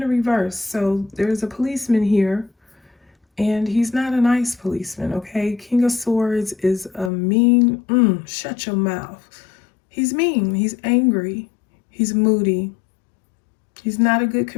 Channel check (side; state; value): right; drops out; at 7.1 s